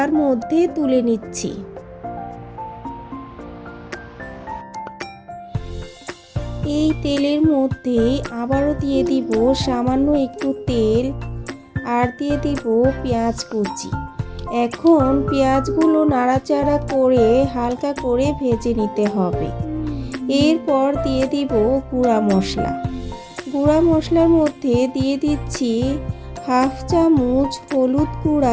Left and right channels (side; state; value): both; identical; correlation 1.00